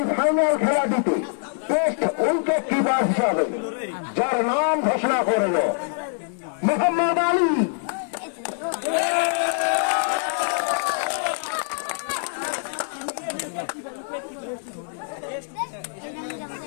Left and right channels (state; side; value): silent; right; 62 dB below the other